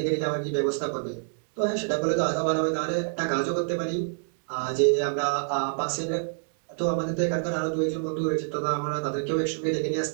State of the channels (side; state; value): left; silent; digital silence